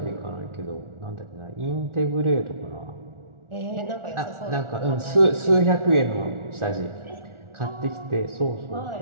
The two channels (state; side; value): late; left; 1.4 ms